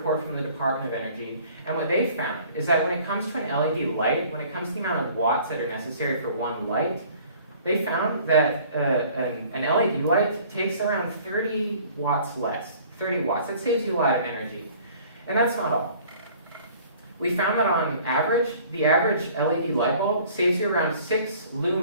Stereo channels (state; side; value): inverted; both; correlation -0.52